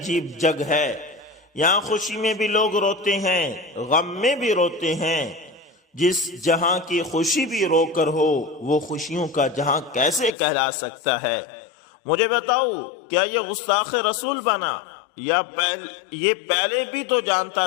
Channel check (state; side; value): drops out; right; at 10.3 s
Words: جگ ہے، یہاں خوشی میں بھی لوگ روتے ہیں، غم میں بھی روتے ہیں۔ جس جہاں کی خوشی بھی رو کر ہو وہ خوشیوں کا جہاں کیسے کہلا سکتا ہے؟ مجھے بتاؤ، کیا یہ گستاخ رسول بنا یا یہ پہلے بھی تو جانتا